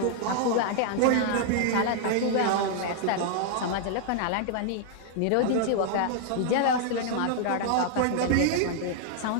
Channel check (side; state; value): both; different; correlation 0.00